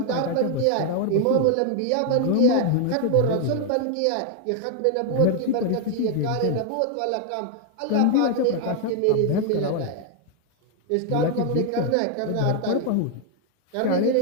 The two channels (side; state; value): both; different; correlation 0.00